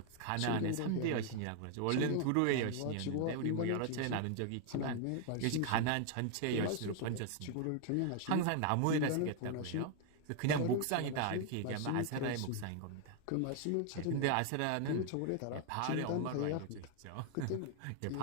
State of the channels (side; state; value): both; different; correlation 0.00